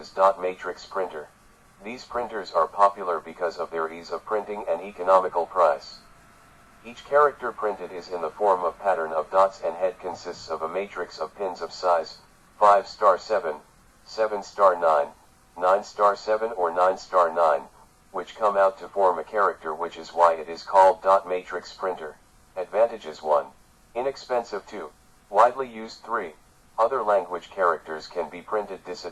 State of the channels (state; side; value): identical; both; correlation 1.00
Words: dot matrix printer. These printers are popular because of their ease of printing and economical price. Each character printed is in the form of pattern of dots, and head consists of a matrix of pins of size 5*7, 7*9, 9 7 or 9 9, which come out to form a character, which is why it is called dot matrix printer. Advantages: 1. Inexpensive. 2. Widely used. 3. Other language characters can be printed.